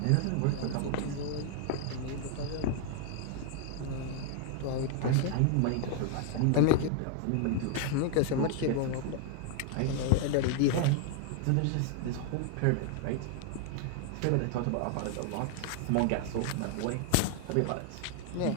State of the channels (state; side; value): different; both; correlation 0.00